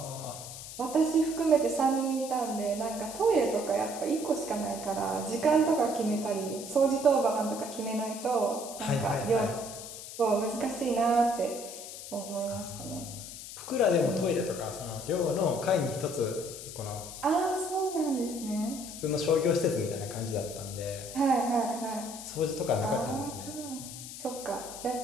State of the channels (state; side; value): noise; left; hiss, 11 dB below the sound